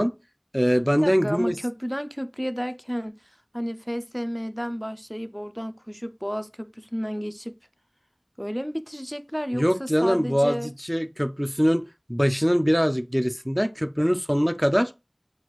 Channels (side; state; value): both; identical; correlation 1.00